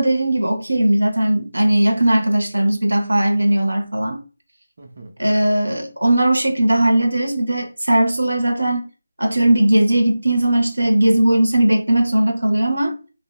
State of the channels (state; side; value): inverted; both; correlation -0.96